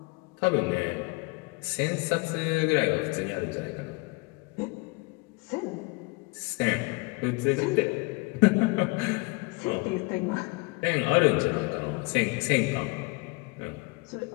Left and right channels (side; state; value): right; quieter; 26.9 dB